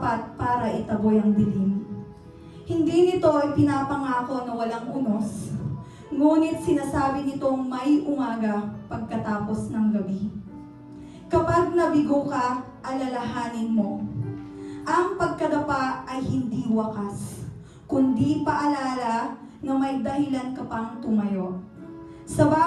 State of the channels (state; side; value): identical; both; correlation 1.00